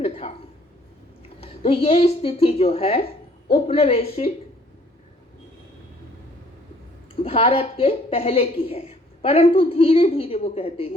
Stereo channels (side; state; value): both; normal; correlation 0.60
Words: तो ये स्थिति जो है उपनिवेशिक भारत के पहले की है, परंतु धीरे धीरे वो कहते